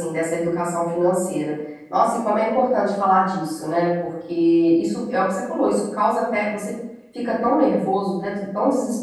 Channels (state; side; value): identical; both; correlation 1.00